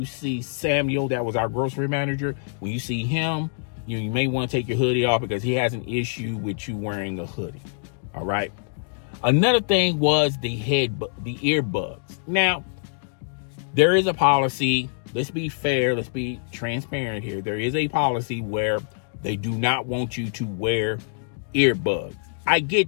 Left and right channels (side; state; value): right; silent; digital silence